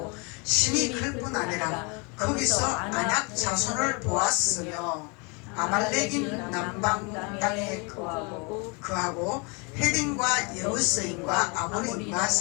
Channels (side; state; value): right; quieter; 31.9 dB